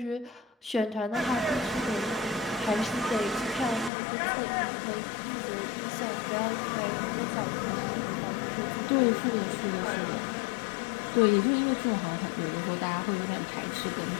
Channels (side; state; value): right; drops out; at 3.9 s